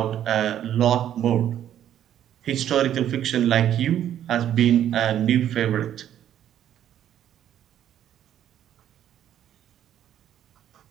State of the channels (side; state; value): left; quieter; 10.8 dB